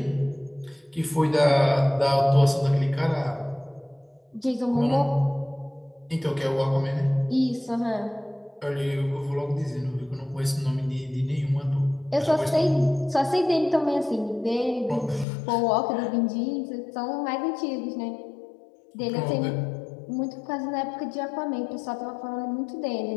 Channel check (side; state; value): right; drops out; at 15.2 s